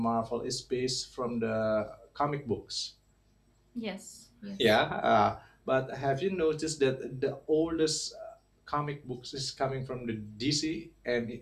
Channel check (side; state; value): both; identical; correlation 1.00